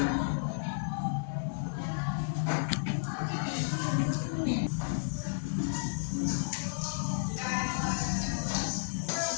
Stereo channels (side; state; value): right; silent; digital silence